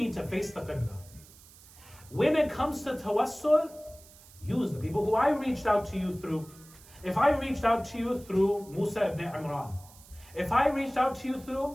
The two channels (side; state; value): right; noise; hiss, 23 dB below the sound